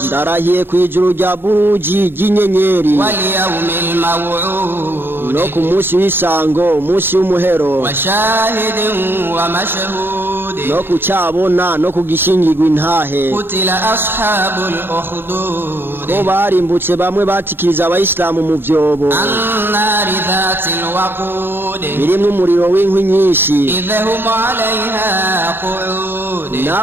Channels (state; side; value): late; left; 0.10 ms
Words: Ndarahiye kwijuru rya buruji ry'inyenyeri wal yawmil maw'ud no ku munsi w'isango umunsi w'umuhero wa shahidin wa mashhud no ku cyabona no ku gishingirwa intahe. qutila ashabul ukhdud bo barimbutse bamwe batikiriza abayisilamu mu vyobo annari dhatil waqud birimwo umuriro w'inkwi nyinshi idhahum 'alayha qu'ud